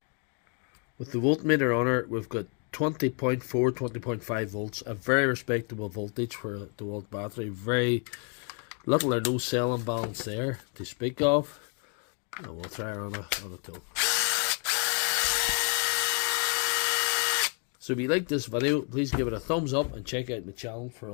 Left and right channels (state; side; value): quieter; right; 38.6 dB